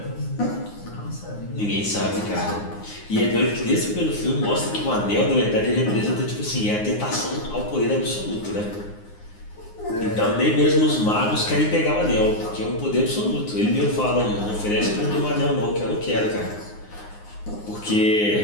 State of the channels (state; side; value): late; right; 9.6 ms